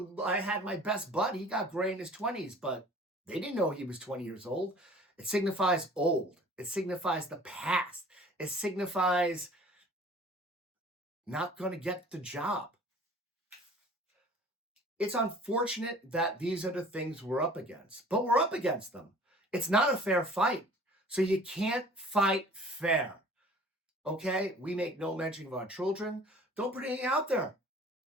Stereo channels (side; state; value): both; normal; correlation 0.48